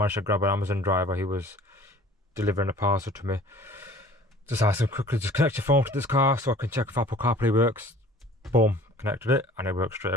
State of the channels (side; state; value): both; normal; correlation 0.49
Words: to grab an Amazon driver. He was delivering a parcel to me. Just asked him quickly, just connect your phone to this car so I can check if Apple CarPlay works. Boom, connected it and it works straight